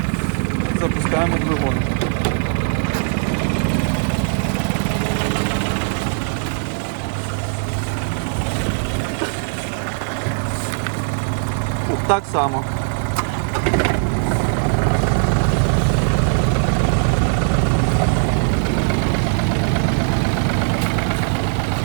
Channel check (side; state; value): left; silent; digital silence